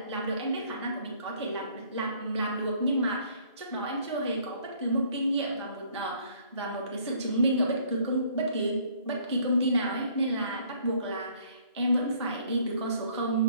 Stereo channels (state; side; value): inverted; both; correlation -0.60